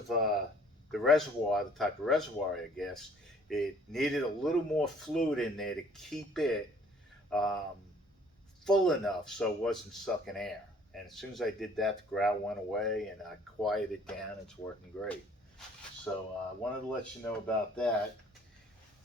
the reservoir, the type of reservoir, I guess, it needed a little more fluid in there to keep it full enough so it wasn't sucking air. And as soon as I did that, the growl went away, and I quieted it down. It's working great. So I wanted to let you know about that.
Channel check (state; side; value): normal; both; correlation 0.57